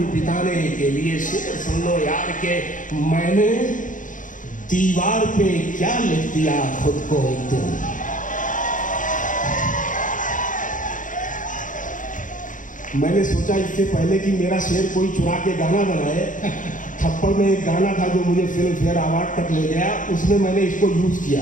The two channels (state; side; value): late; right; 0.38 ms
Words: बिताने के लिए। शेर सुन लो यार के, मैंने दीवार पे क्या लिख दिया खुद को एक दिन। मैंने सोचा इससे पहले कि मेरा शेर कोई चुरा के गाना बनाए, थप्पड़ में एक गाना था जो मुझे फिल्म फेयर अवार्ड तक ले गया, उसमें मैंने इसको यूज